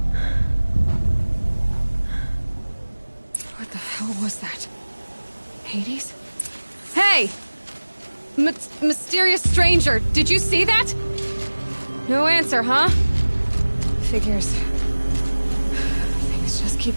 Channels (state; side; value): inverted; both; correlation -1.00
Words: What the hell was that? Hades? Hey! Mysterious stranger, did you see that? No answer, huh? Figures. Things just